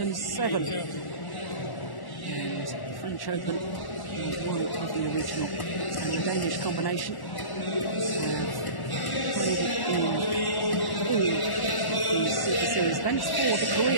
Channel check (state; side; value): late; right; 1.1 ms